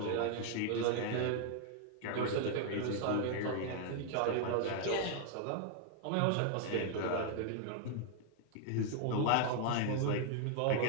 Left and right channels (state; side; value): different; both; correlation 0.00